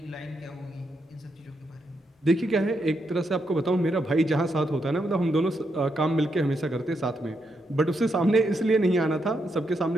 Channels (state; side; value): normal; both; correlation 0.81